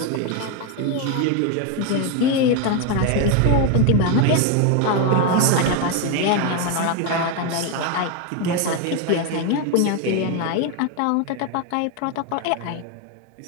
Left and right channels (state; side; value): different; both; correlation 0.01